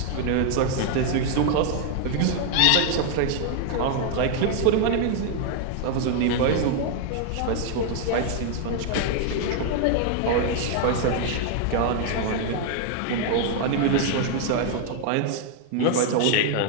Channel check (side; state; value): both; different; correlation 0.00